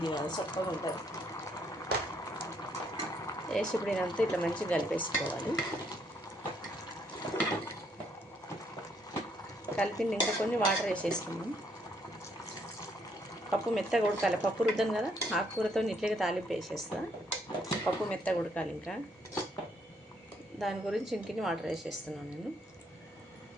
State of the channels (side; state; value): both; normal; correlation 0.70